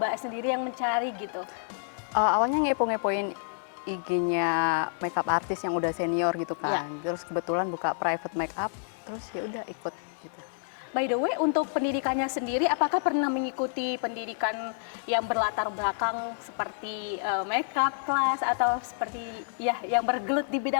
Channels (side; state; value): right; silent; digital silence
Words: sendiri yang mencari gitu? Awalnya ngepo-ngepoin IG-nya makeup artis yang udah senior gitu Iya. kan. Terus kebetulan buka private makeup, terus ya udah ikut gitu. By the way, untuk pendidikannya sendiri, apakah pernah mengikuti pendidikan yang berlatar belakang seperti makeup class atau seperti ya yang bergelut di